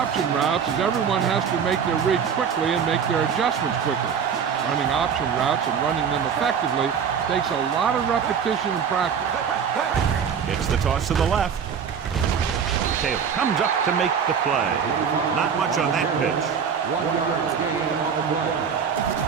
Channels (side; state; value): left; quieter; 7.1 dB